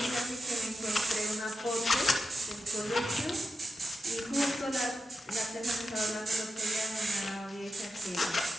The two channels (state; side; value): normal; both; correlation 0.90